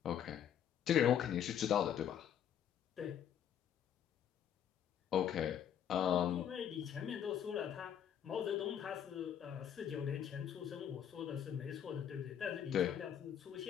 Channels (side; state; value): right; quieter; 9.3 dB